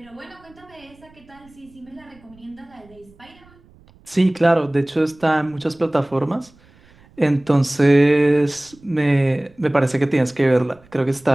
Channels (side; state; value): right; noise; rumble, 28 dB below the sound